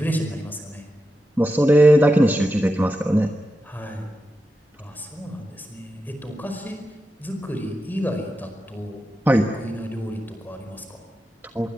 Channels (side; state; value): both; normal; correlation 0.89